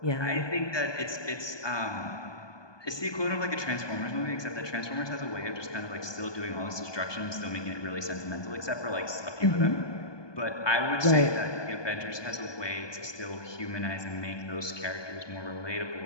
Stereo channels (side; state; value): right; late; 1.2 ms